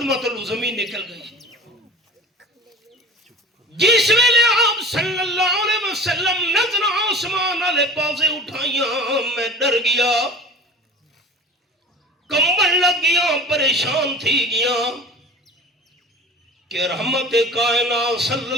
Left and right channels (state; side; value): normal; both; correlation 0.40